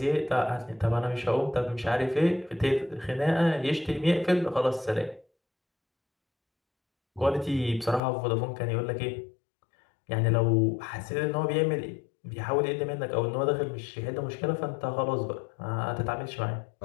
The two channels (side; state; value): right; drops out; at 8.0 s